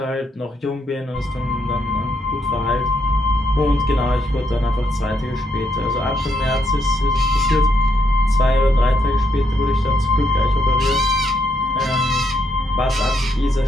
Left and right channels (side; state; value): both; normal; correlation 0.76